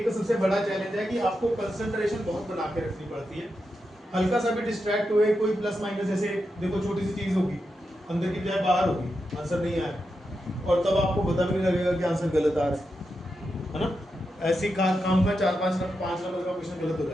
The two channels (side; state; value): both; normal; correlation 0.87